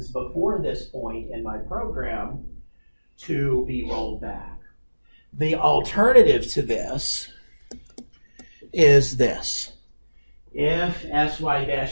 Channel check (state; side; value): inverted; both; correlation -1.00